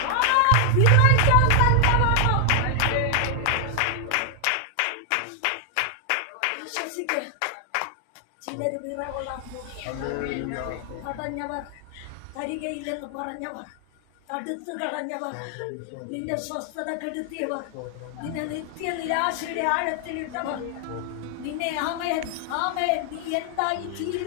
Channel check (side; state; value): both; different; correlation 0.00